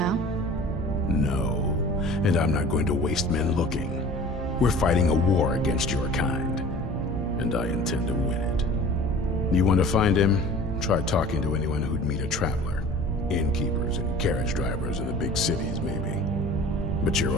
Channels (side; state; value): both; normal; correlation 0.43